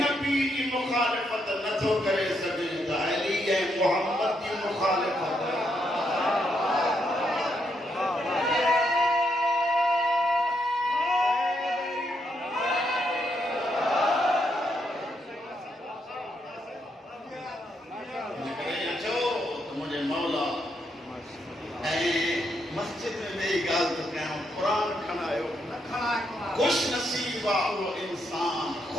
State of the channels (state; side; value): normal; both; correlation 0.78